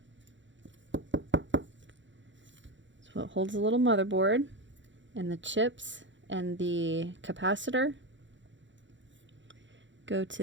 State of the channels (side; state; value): left; late; 0.54 ms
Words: It's what holds the little motherboard, and the chips and the capacitor go